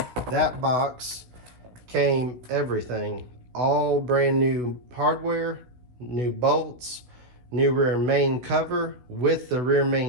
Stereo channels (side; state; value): left; late; 16 ms